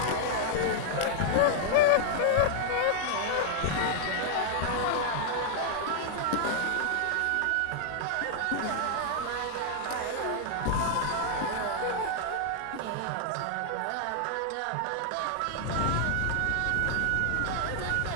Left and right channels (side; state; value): both; different; correlation 0.00